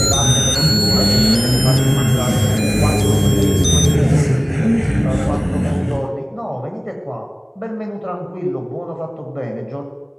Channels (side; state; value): both; identical; correlation 1.00